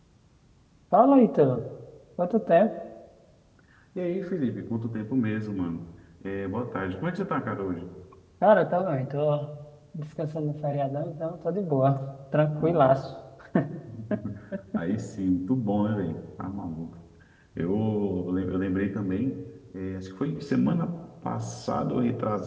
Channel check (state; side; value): identical; both; correlation 1.00